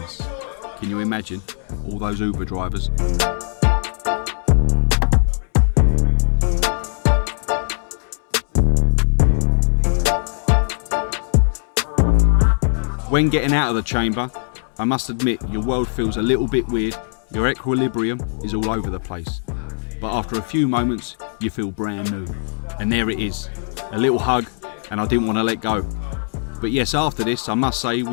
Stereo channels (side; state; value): right; silent; digital silence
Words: Can you imagine? All those Uber drivers. When getting out of the chamber, I must admit your world feels a little bit weird, your equilibrium is all over the place. But after a few moments, you feel brand new. And there it is, a little hug, and I didn't want to let go. But yes, after this, I must say